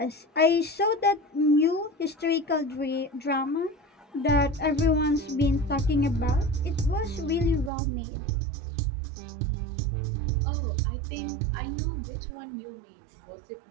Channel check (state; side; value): drops out; left; at 7.7 s